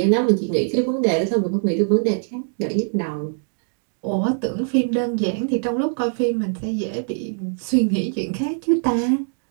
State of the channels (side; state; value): left; silent; digital silence